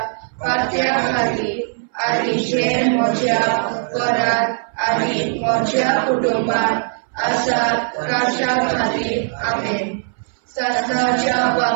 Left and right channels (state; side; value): silent; left; 62 dB below the other